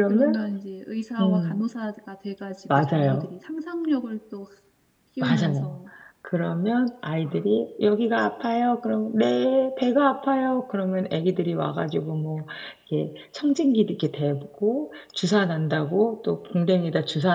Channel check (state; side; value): identical; both; correlation 1.00